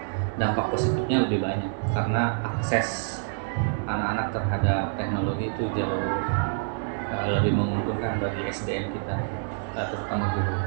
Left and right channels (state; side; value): silent; left; digital silence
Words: dampak positifnya lebih banyak karena akses anak-anak terhadap teknologi itu jauh lebih menguntungkan bagi SDM kita, terutama guru.